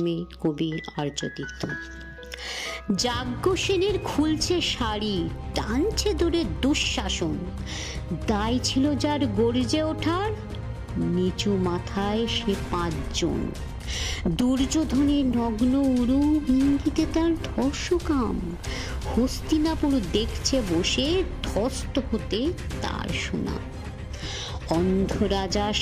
কবি আর্যতীর্থ। যাজ্ঞসেনের খুলছে শাড়ি, টানছে ধরে দুঃশাসন, দায় ছিল যার গর্জে ওঠার, নিচু মাথায় সে 5 জন। দুর্যোধনের নগ্ন উরু, ইঙ্গিতে তার ধর্ষকাম, হস্তিনাপুর দেখছে বসে, ধ্বস্ত হতে তার সুনাম। অন্ধ রাজা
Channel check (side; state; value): both; identical; correlation 1.00